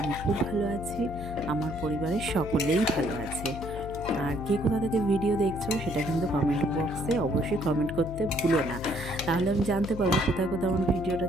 খুব ভালো আছি, আমার পরিবারের সকলেই ভালো আছে। আর কে কোথা থেকে ভিডিও দেখছো সেটা কিন্তু কমেন্ট বক্সে অবশ্যই কমেন্ট করতে ভুলো না, তাহলে আমি জানতে পারবো কোথায় কোথায় আমার ভিডিওটা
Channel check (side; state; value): left; noise; hum, 9 dB below the sound